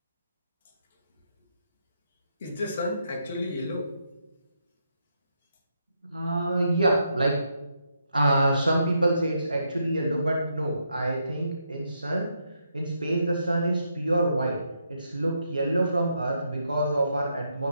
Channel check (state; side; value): inverted; both; correlation -0.79